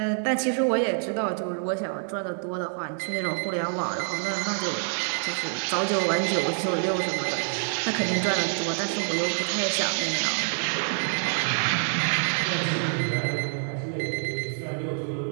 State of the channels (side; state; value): left; silent; 59 dB below the other